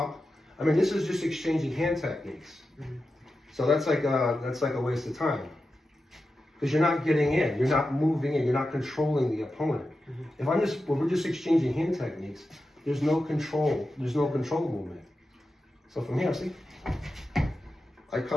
I mean, this is just exchanging hand techniques. So that's like a waste of time. Because you're not getting in, you're not moving in, you're not controlling the opponent. If we're just exchanging hand techniques, there's no control movement. So from here, see, I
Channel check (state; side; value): normal; both; correlation 0.91